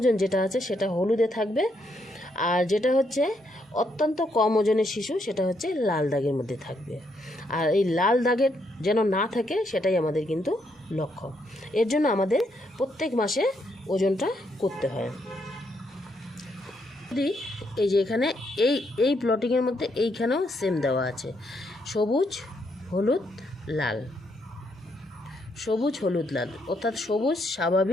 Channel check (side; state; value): both; normal; correlation 0.76